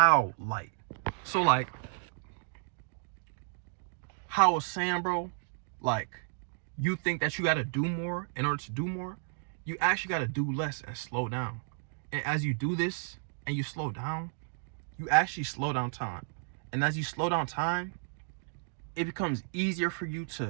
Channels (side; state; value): left; silent; digital silence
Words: light. So like how I was saying, bro, like you think that you got to do more in order to do more. You actually got to do less and slow down. And as you do this and you slow down, you actually slow down time. And as you slow down time, it becomes easier for you